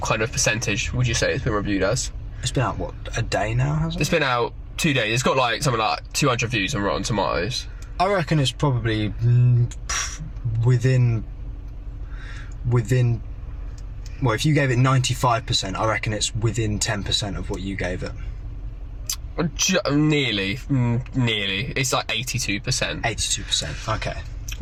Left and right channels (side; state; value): both; identical; correlation 1.00